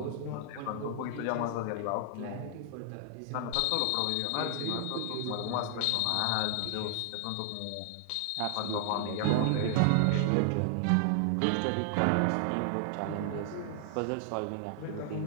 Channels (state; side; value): different; both; correlation 0.00